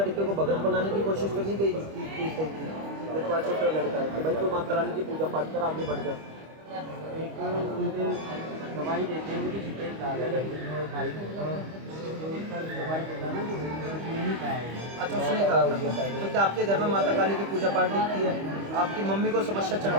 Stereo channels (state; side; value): late; left; 25 ms